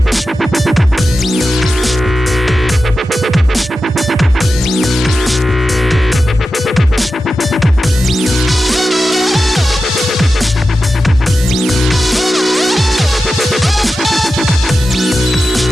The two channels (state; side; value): normal; both; correlation 0.92